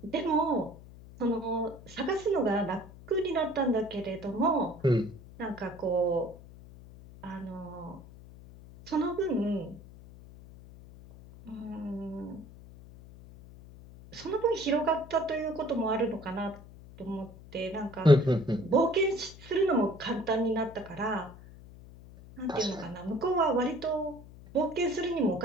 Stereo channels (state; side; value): noise; left; hum, 18 dB below the sound